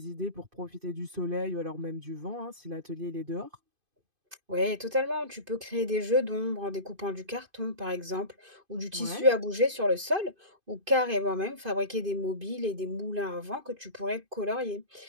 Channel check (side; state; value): left; late; 2.5 ms